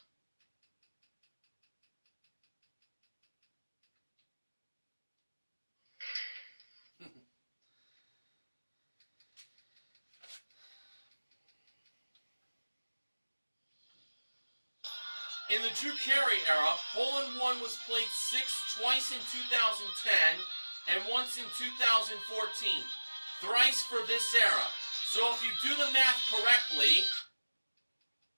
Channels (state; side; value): inverted; both; correlation -1.00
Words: In the Drew Carey era, hole-in-one was played twice in 2010 and once in 2014. Thrice for this era. So if you do the math correctly,